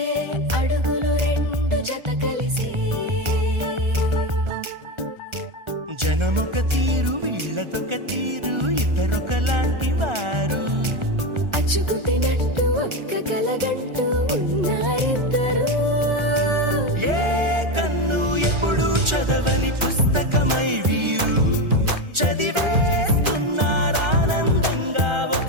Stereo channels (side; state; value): left; late; 1.4 ms